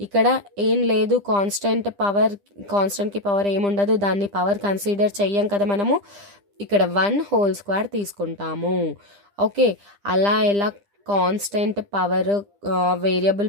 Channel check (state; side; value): late; left; 10 ms